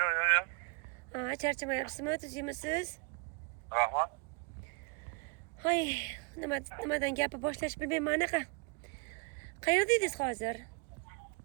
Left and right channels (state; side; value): quieter; left; 33.2 dB